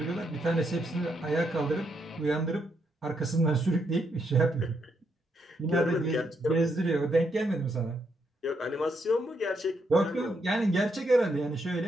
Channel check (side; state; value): both; normal; correlation 0.77